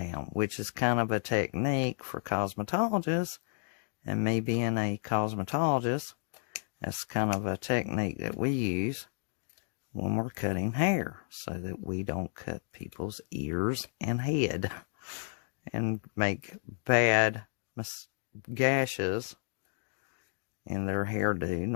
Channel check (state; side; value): silent; right; digital silence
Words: which is kind of a technique for cosmetologists, and me being a cosmetologist, that's kind of a technique that we use when we're cutting hair, so that we don't cut people's ears and head and make bad gashes in their hairdo